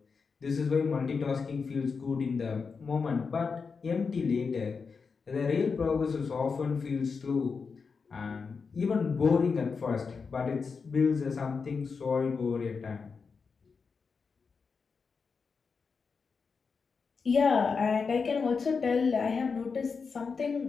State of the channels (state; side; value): quieter; right; 5.2 dB